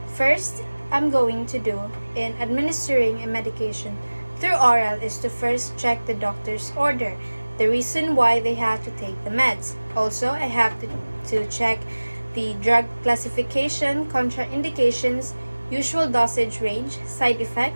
first, I'm going to do in administering a medication through oral is to first check the doctor's order, the reason why they have to take the meds. Also, I have to check the drug classification, contraindications, usual dosage range, side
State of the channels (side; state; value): both; inverted; correlation -1.00